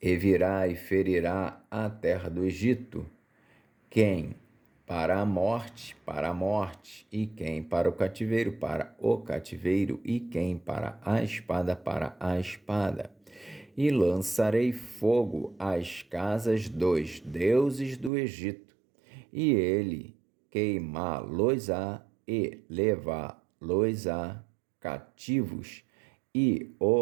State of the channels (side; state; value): left; drops out; at 18.1 s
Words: E virá e ferirá a terra do Egito, quem para a morte, e quem para o cativeiro, e quem para a espada. E lançarei fogo às casas dos deuses do Egito, e ele queimá-los-á e levá-los-á cativos, e